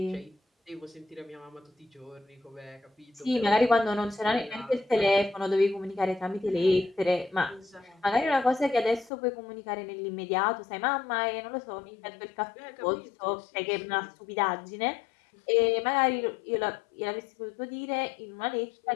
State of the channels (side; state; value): right; drops out; at 9.1 s